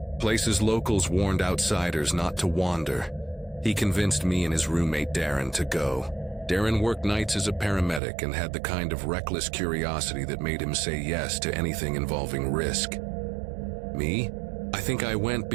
places locals warned outsiders not to wander. He convinced me and his roommate Darren to go. Darren worked nights as a paramedic and had the kind of reckless curiosity that made him say yes to anything involving risk. Me? I think I went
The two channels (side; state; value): left; drops out; at 8.0 s